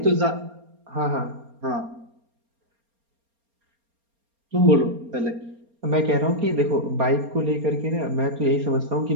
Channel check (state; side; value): late; left; 4.3 ms